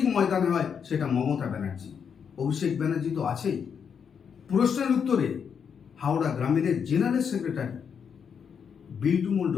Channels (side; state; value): right; quieter; 7.0 dB